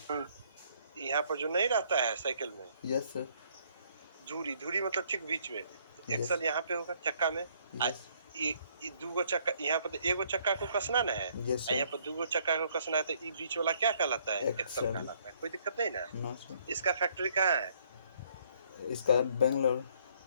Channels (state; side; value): inverted; both; correlation -0.64